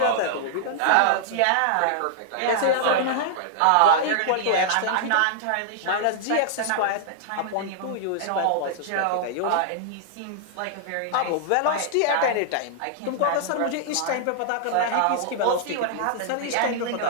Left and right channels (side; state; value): both; different; correlation -0.01